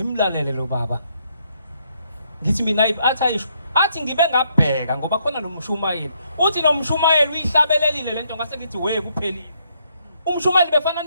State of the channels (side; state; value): both; inverted; correlation -0.73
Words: lo baba. Ngithi mina athi ngibe ngabheka ngoba khona nomshumayeli. Uthi nomshumayeli uyihlabelelile lento ngase ngithi we kuphelile. Umshumayeli befana